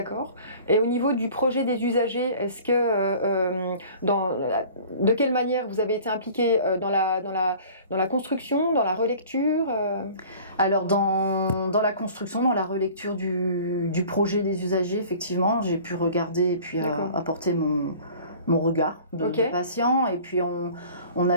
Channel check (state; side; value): inverted; both; correlation -0.46